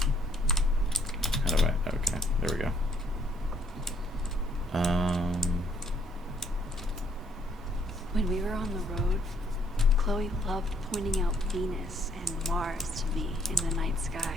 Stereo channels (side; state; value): both; normal; correlation 0.67